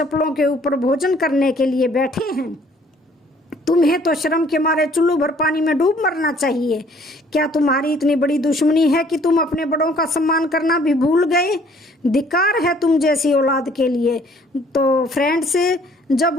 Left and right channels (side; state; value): both; normal; correlation 0.59